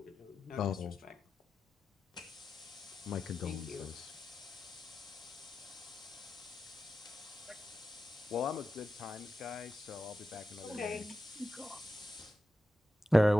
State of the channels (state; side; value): normal; both; correlation 0.91